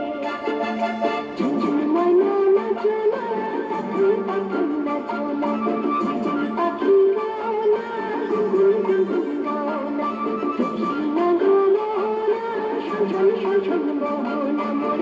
ঝুনঝুন ময়না নাচো না, পাখি পাখি নাচো না, ঝুনঝুন পাখি গাও না, গুনগুন গুনগুন গাও না, দক্ষিণা গো মোহনা, শোন শোন শোন শোন মোহনা, মোর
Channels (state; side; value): identical; both; correlation 1.00